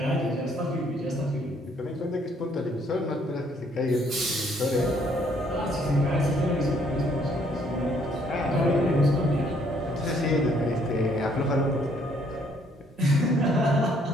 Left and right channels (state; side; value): normal; both; correlation 0.66